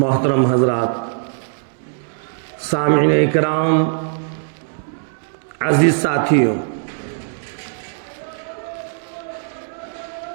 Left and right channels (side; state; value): left; silent; digital silence